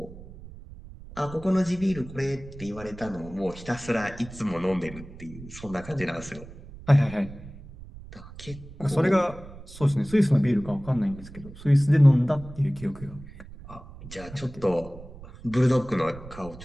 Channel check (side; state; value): right; noise; rumble, 16 dB below the sound